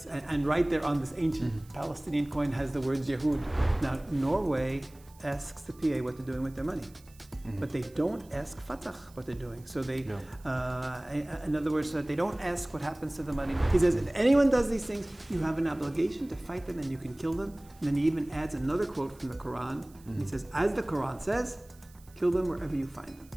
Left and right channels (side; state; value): right; noise; hiss, 27 dB below the sound